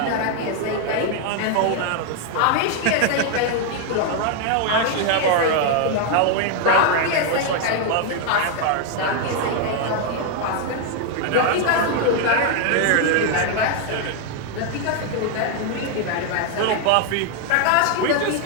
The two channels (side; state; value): both; different; correlation 0.00